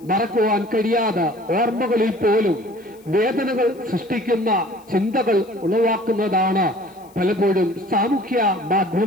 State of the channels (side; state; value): left; noise; hiss, 29 dB below the sound